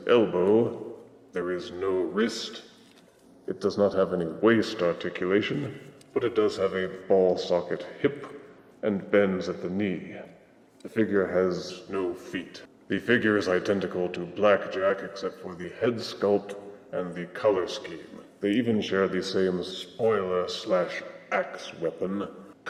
elbow. There is no wrist. It does not have any waist articulation, but it does have a ball-socket hip and bends at the knee. The figure has no feet. The figure is identical to Blackjack except for the head sculpt and the color scheme. They even share the same spoiler/axe weapon.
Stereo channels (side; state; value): both; identical; correlation 1.00